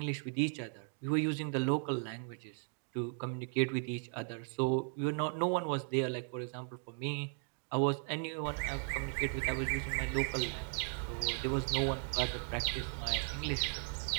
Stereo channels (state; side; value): silent; left; 53 dB below the other